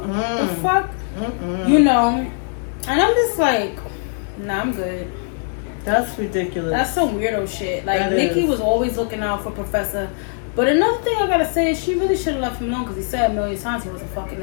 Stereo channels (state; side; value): silent; right; 62 dB below the other